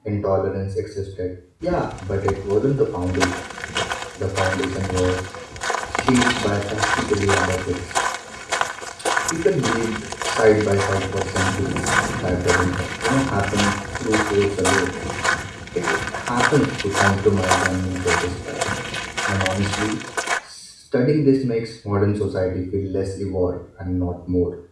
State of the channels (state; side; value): identical; both; correlation 1.00